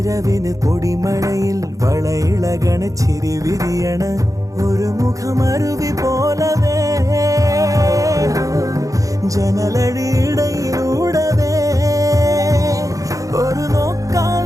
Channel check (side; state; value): left; late; 0.16 ms